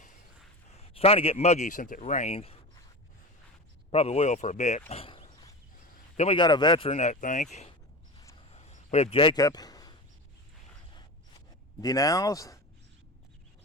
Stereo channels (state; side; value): normal; both; correlation 0.28